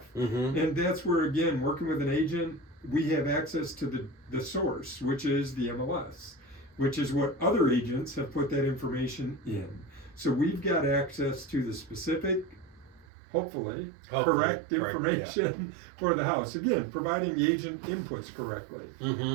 Mm-hmm. And that's where, again, working with an agent, we have access to the source, which is the MLS, which is what other agents have put that information in. So we've got access to the specific, hopefully correct information for the house. Again, providing the agent inputs correctly.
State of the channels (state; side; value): drops out; left; at 13.1 s